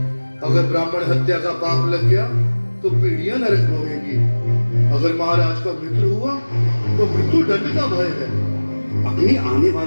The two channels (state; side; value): inverted; both; correlation -1.00